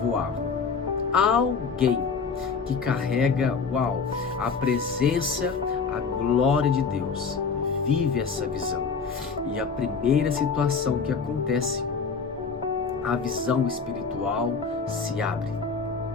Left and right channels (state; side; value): quieter; right; 5.3 dB